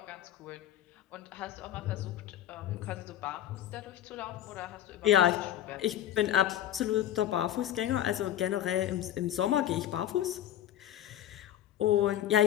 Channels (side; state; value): right; quieter; 11.8 dB